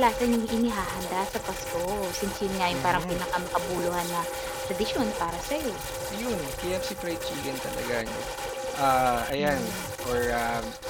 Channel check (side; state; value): both; identical; correlation 1.00